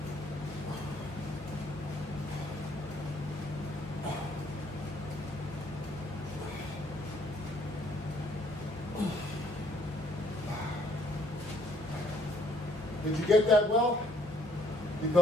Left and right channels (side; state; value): both; normal; correlation 0.65